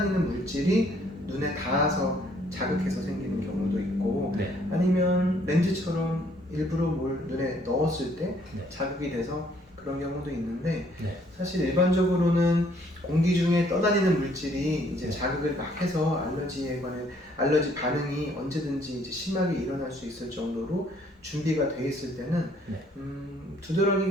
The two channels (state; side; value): normal; both; correlation 0.64